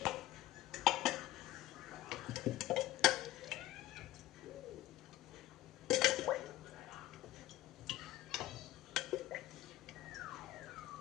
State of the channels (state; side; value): quieter; right; 15.5 dB